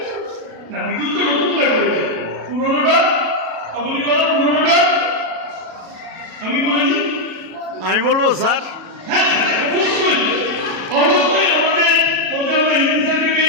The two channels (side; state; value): left; late; 37 ms